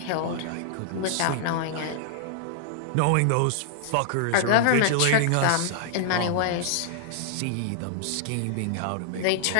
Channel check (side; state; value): both; different; correlation -0.01